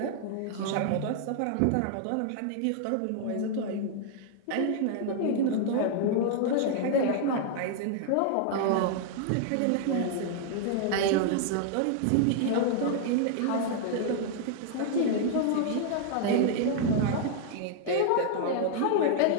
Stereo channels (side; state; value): both; different; correlation -0.01